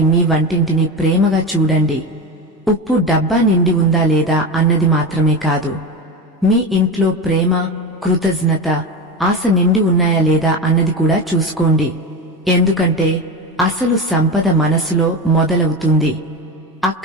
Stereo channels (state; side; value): normal; both; correlation 0.21